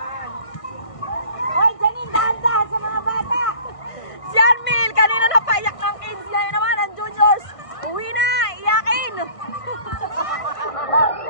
Hoy, Janine, dahan-dahan sa mga bata. Si Armin, kanina napaiyak ng kids. Ngayon naman, ang juniors. Uwi na, iyakin.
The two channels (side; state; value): right; late; 1.6 ms